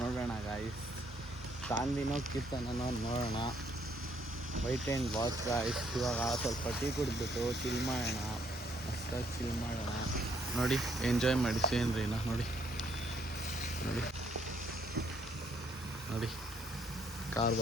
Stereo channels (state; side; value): normal; both; correlation 0.69